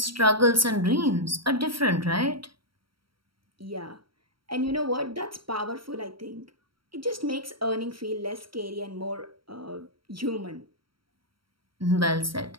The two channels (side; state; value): left; late; 0.74 ms